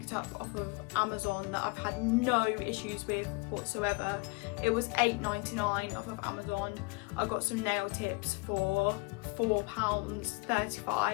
up off of Amazon that I've had no issues with whatsoever, it was £8.99 off of Amazon. I got some nail tips for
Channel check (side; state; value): right; quieter; 27.7 dB